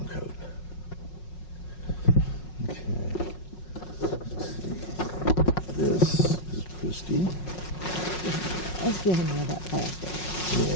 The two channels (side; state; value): right; late; 5.5 ms